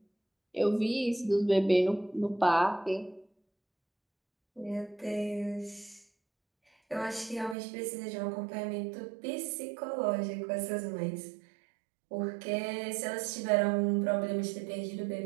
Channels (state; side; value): drops out; left; at 7.6 s